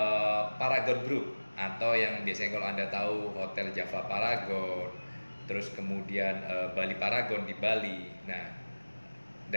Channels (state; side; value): inverted; both; correlation -1.00